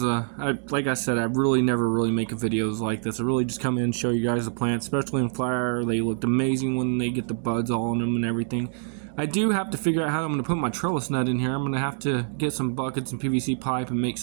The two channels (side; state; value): left; silent; digital silence